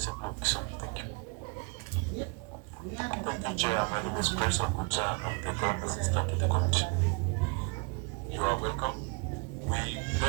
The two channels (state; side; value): quieter; left; 30.1 dB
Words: of Kisumu. Thank you. Thank you, Chair. My name is Prince Okucha. I'm the current assistant to the committee. You are welcome. We